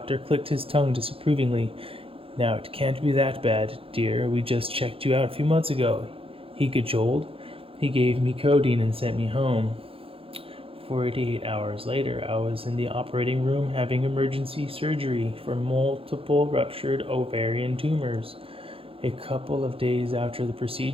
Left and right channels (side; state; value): left; late; 0.27 ms